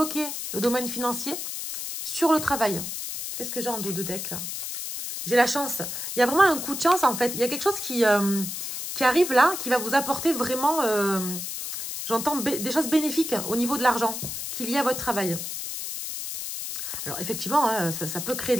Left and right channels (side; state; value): left; noise; hiss, 6 dB below the sound